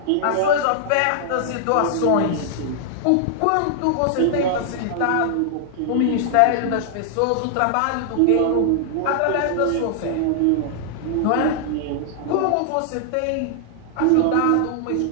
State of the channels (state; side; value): different; both; correlation -0.01